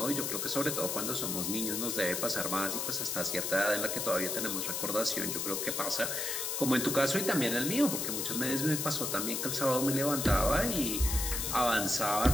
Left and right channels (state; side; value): noise; left; hiss, 1 dB below the sound